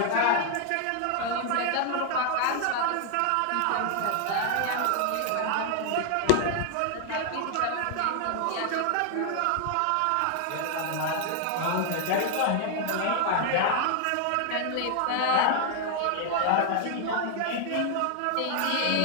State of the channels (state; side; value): different; both; correlation 0.00